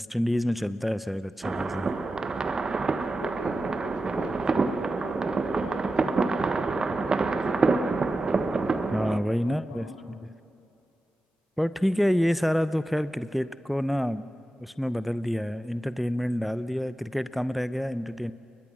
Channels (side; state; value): both; normal; correlation 0.92